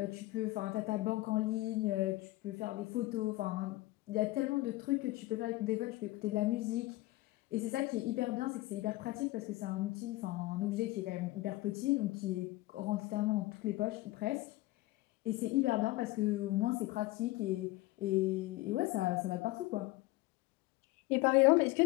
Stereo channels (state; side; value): quieter; right; 19.2 dB